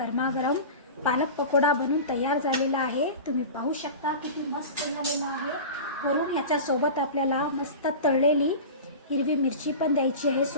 पालक पकोडा बनून तयार झालेला आहे. तुम्ही पाहू शकता किती मस्त झालेला आहे. वरून ह्याच्या सोबत आपल्याला मस्त तळलेली हिरवी मिरची पण द्यायची आहे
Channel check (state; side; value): inverted; both; correlation -0.32